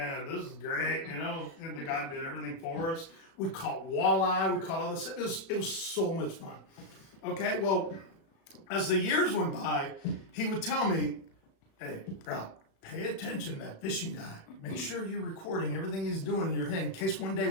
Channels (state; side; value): late; right; 36 ms